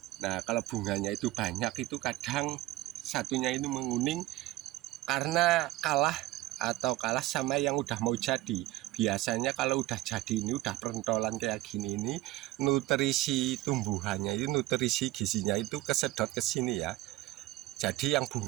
Nah, kalau bunganya itu banyak itu kadang satunya itu menguning karena kalah sama yang udah mau jadi. Biasanya kalau udah jadi ini udah pentolan kayak gini ini, nutrisi tumbuhannya itu, nutrisi gizinya itu kesedot ke sini ya. Jadi yang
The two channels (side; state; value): left; quieter; 17.4 dB